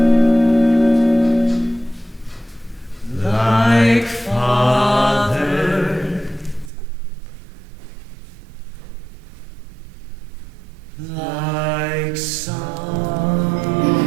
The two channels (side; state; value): left; drops out; at 6.7 s